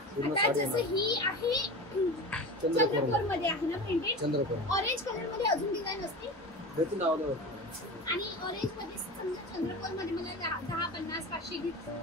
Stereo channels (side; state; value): both; normal; correlation 0.30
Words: जसं ही आहे चंद्रकोर मध्ये आहे ना प्रिंटेड? चंद्रकोर ऑरेंज कलर मध्ये अजून डिझाइन असते भेटून आवडलं आणि ऑरेंज मध्ये समजा चंद्रकोर मध्ये मला 10 50 500